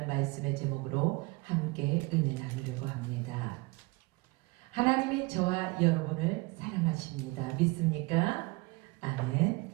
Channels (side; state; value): left; quieter; 24.5 dB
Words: 말씀의 제목으로 함께 은혜 나누려고 합니다. 하나님이 저와 여러분을 사랑하십니다. 믿습니까? 아멘.